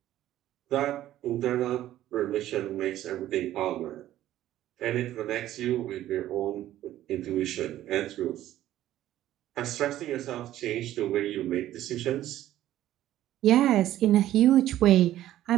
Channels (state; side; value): quieter; left; 13.4 dB